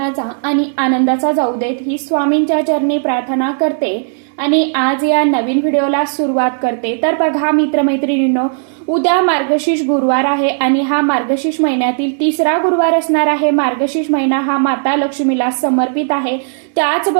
आणि आनंदाचा जाऊ देत ही स्वामींच्या चरणी प्रार्थना करते आणि आज या नवीन व्हिडिओला सुरुवात करते. तर बघा मित्रमैत्रिणींनो, उद्या मार्गशीर्ष गुरुवार आहे आणि हा मार्गशीर्ष महिन्यातील तिसरा गुरुवार असणार आहे. मार्गशीर्ष महिना हा माता लक्ष्मीला समर्पित आहे.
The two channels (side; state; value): left; silent; digital silence